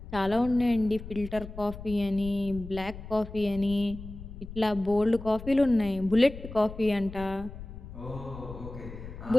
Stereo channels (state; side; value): noise; left; rumble, 13 dB below the sound